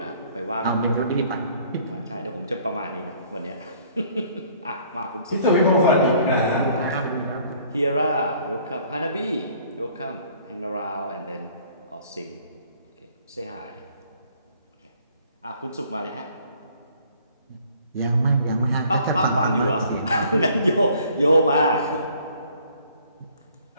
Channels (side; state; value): both; inverted; correlation -0.59